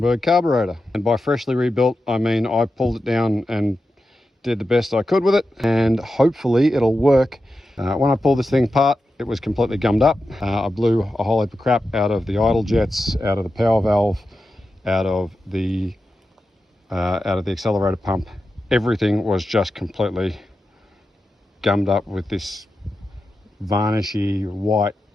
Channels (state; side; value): normal; both; correlation 0.91